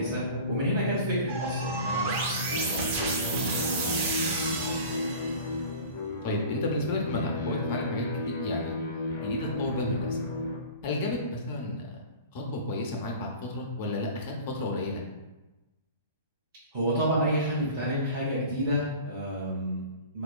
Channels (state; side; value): inverted; both; correlation -0.39